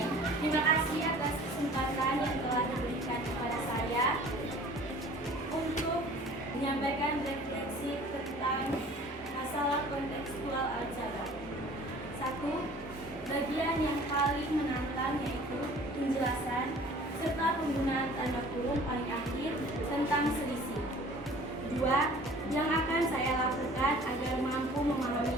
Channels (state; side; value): normal; both; correlation 0.48